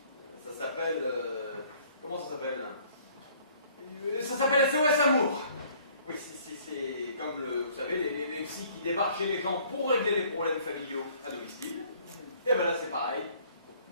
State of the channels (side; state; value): both; inverted; correlation -0.58